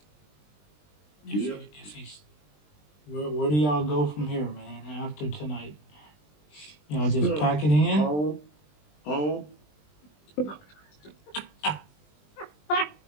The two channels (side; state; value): right; late; 20 ms